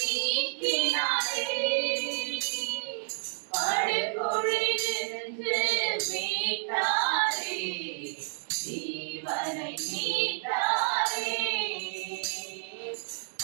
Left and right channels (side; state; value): left; silent; digital silence